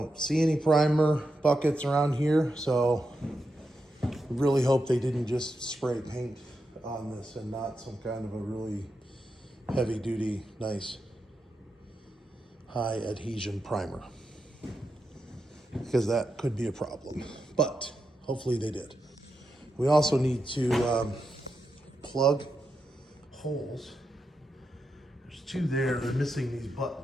see any primer buckets around here, so I really hope they didn't just spray paint on this and not some kind of a really heavy duty, nice high adhesion primer, because that could be a problem, but hopefully they did. We also need to plug holes. There's two there, they're missing these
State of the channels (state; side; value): normal; both; correlation 0.86